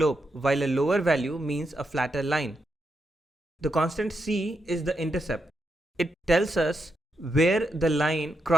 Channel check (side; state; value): both; normal; correlation 0.84